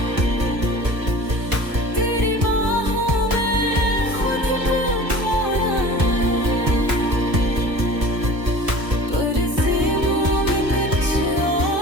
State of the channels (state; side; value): late; left; 1.5 ms